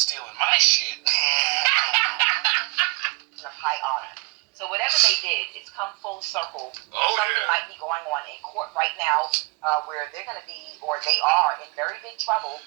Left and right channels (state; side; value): quieter; left; 29.6 dB